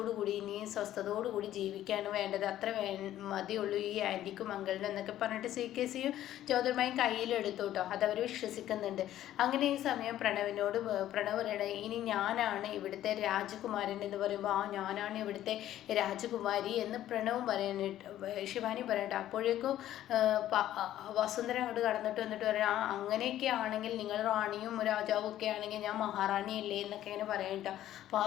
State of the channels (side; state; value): right; quieter; 12.8 dB